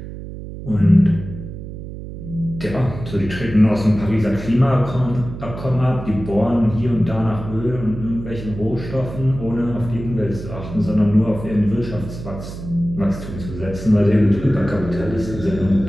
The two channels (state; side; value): noise; right; hum, 10 dB below the sound